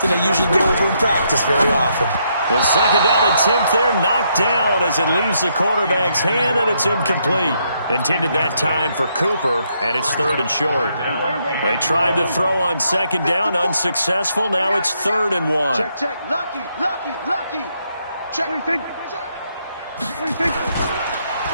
they usually go over in practice very often. The second down attempt there knocked down as it leaves the quarterback's hand, and it's incomplete. Intended that time for Cooper, and it's third and short. They tried to throw on second down, unsuccessful. Now it's 3rd and 1. Check. Lucky. Check. What do you think?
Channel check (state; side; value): inverted; both; correlation -0.76